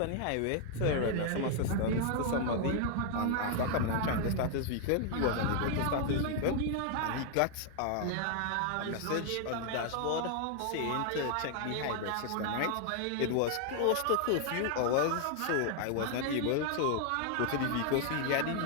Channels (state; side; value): different; both; correlation 0.00